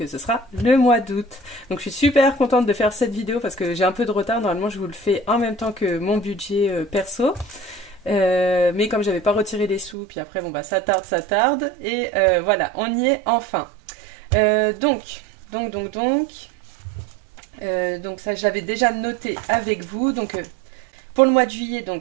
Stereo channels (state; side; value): drops out; left; at 10.0 s